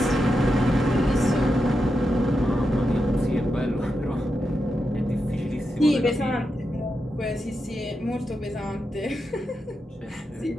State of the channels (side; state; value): both; normal; correlation 0.87